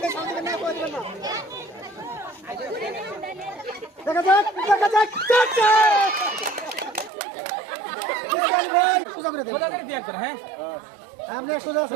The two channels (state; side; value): drops out; left; at 7.1 s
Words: শান্তি দেবেন না, কথা দিবেন না। দেখা যাক, দেখা যাক। ভাই সোজা করে দেন, সোজা করে দিয়ে একবার। হ্যাঁ আপনি সোজা